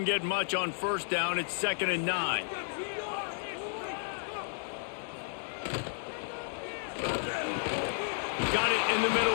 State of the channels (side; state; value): right; silent; 56 dB below the other